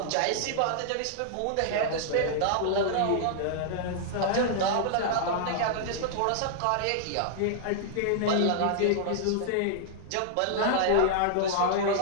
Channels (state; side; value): different; both; correlation -0.01